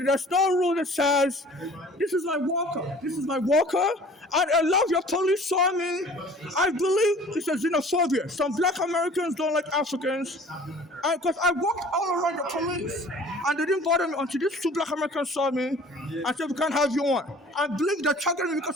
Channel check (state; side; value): normal; both; correlation 0.48